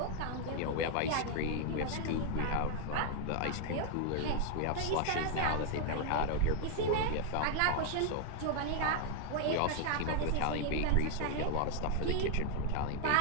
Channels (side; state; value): both; different; correlation 0.00